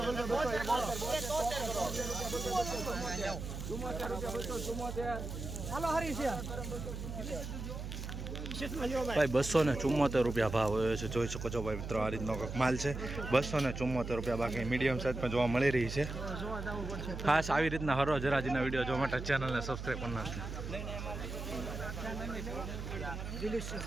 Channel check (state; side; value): noise; right; hum, 6 dB below the sound